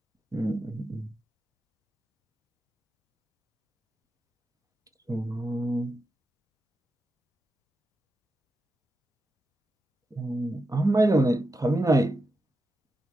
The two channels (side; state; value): both; normal; correlation 0.88